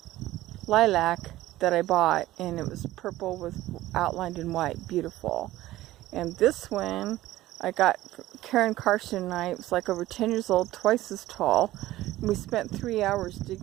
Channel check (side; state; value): left; quieter; 15.9 dB